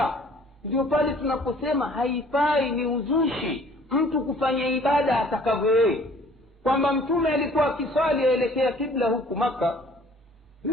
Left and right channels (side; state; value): both; normal; correlation 0.54